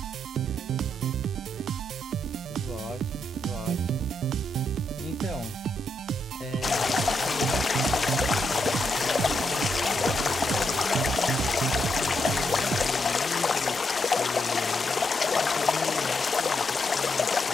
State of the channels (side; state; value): both; normal; correlation 0.80